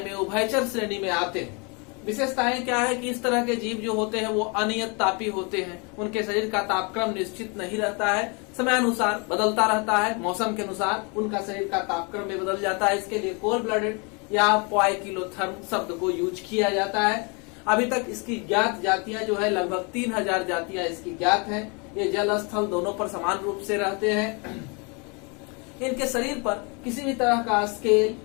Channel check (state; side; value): quieter; right; 32.3 dB